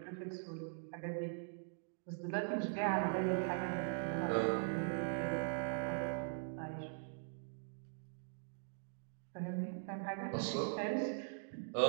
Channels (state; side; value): silent; left; digital silence